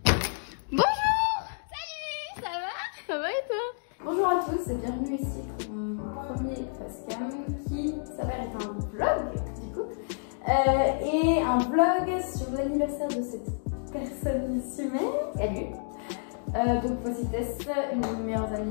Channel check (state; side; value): silent; right; digital silence